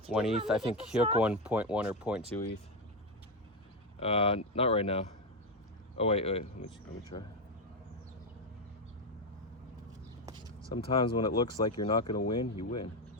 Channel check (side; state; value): both; normal; correlation 0.09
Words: ETH. I think Hyuk won 0.1 or 0.2 ETH. Not right now. Oh wait, let me try. Sometimes when it looks like you're not gonna win, you win.